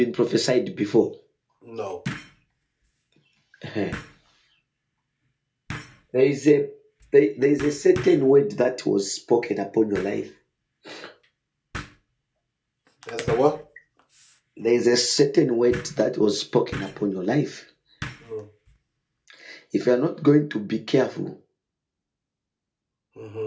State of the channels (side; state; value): both; identical; correlation 1.00